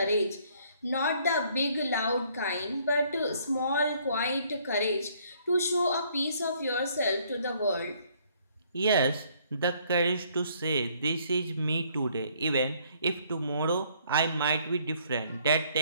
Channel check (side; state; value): both; inverted; correlation -0.64